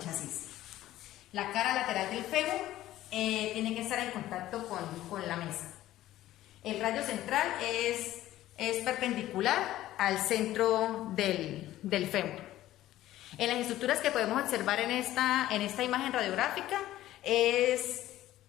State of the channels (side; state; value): right; quieter; 14.5 dB